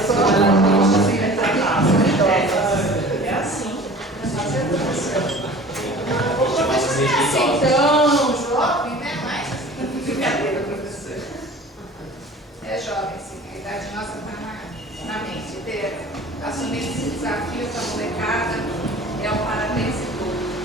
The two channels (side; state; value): both; normal; correlation 0.43